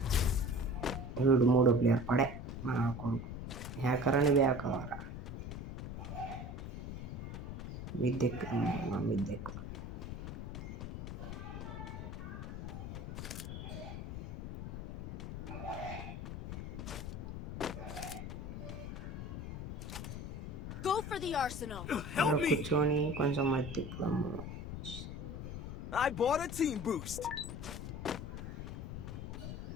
వీడు 3వ ప్లేయర్ పడే నా కొడుకు. హ్యాకర్ అని బ్యాకవరా మిద్దెక్కు. కూర్చొని కొంచెం అది తిప్పుదాము.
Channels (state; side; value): noise; left; rumble, 6 dB below the sound